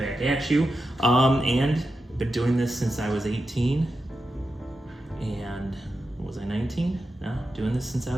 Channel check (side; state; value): both; normal; correlation 0.89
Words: at you. And I've been doing this since I was 18. And was I 19? No, doing this since I